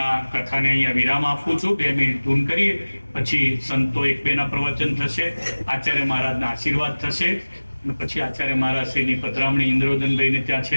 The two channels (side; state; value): both; inverted; correlation -1.00